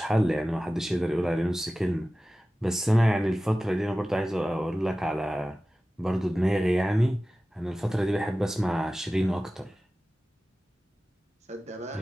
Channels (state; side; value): normal; both; correlation 0.96